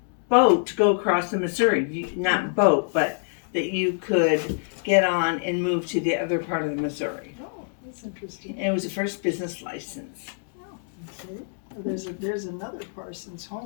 boat to go across the Missouri. Not boat, but that you could get on and move to the other part of the Missouri. Oh, that's interesting. And it was the first business license. Okay. There's another Parsons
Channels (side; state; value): right; silent; digital silence